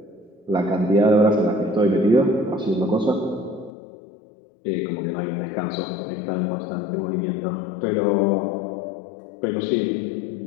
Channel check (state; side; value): drops out; right; at 3.7 s